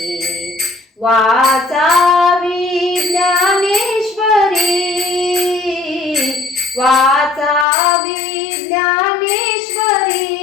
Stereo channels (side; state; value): right; drops out; at 7.7 s